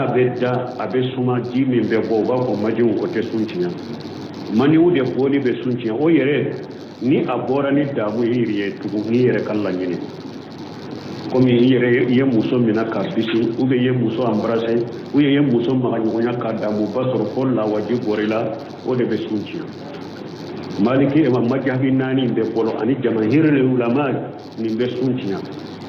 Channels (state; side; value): identical; both; correlation 1.00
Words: bedda abe suma ji min be bo ba ko majiwu ko te sunci mani wude boli be sunci o yere ni abora ni damu yiriye tugu ni yere kallan yini komi yere ye muso mina ka bisi ube ye muso embrasser ou ye muso maganyonya ka damu basoro ko la waji gorila o de be sunci maliki e majhabi nani be bolo ani jamahirul ulama ni be sunci